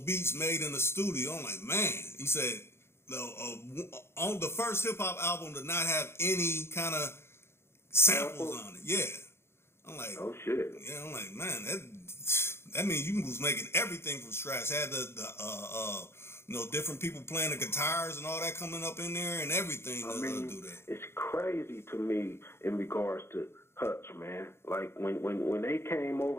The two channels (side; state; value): right; late; 0.12 ms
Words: beats made in the studio. I'm like, man. He said, on the first hip hop album to not have any kind of samples on it. Yeah. I'm like, oh shit. Yeah, I'm like, man, that means you was making everything from scratch. Had the you know, different people playing the guitars and all that coming up in there and everything. I mean, do that. It's crazy to me in regards to Hutch, man. Like when they came